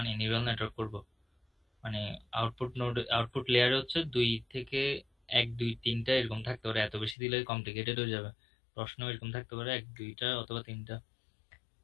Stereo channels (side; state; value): right; drops out; at 7.2 s